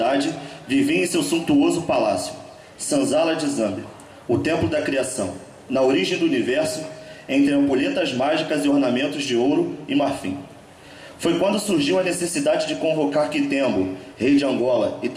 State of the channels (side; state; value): both; identical; correlation 1.00